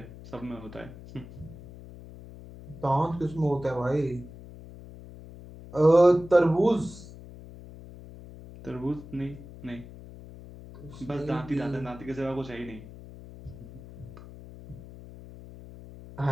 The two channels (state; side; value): noise; left; hum, 16 dB below the sound